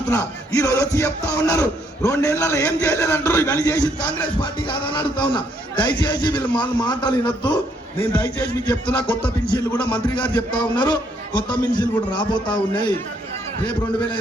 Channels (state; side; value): normal; both; correlation 0.70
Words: ఈ రోజు వచ్చి చెప్తా ఉన్నారు 2 ఏళ్లలో ఏం చేయలేదంటారు. ఇవన్నీ చేసింది కాంగ్రెస్ పార్టీ కాదని అడుగుతా ఉన్నా. దయచేసి వీళ్ళు మాటలు వినొద్దు. నేను దయచేసి మీకు చెప్తున్నా, కొత్త పెన్షన్లు కూడా మంత్రి గారు చెప్తా ఉన్నారు. కొత్త పెన్షన్లు కూడా రాబోతా ఉన్నాయి. రేపు